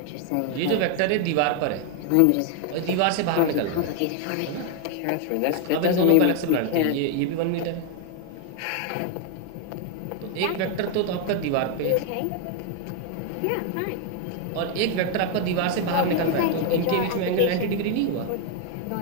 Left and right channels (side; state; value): both; different; correlation 0.01